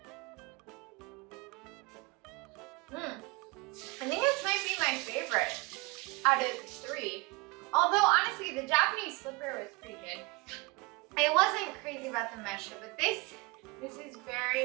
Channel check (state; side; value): quieter; left; 24.9 dB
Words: I think this might be my favorite out of the three. Although honestly, the Japanese slipper was pretty good. I wasn't crazy about the Mesha, but this is